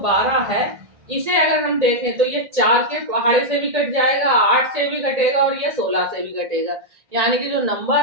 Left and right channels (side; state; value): left; late; 1.8 ms